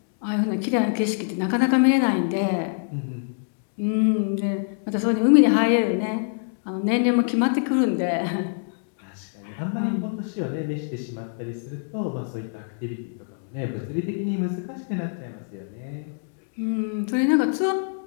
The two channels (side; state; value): right; silent; digital silence